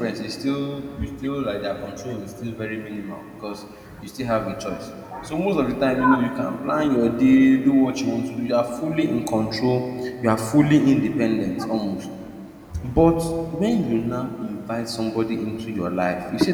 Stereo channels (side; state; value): both; identical; correlation 1.00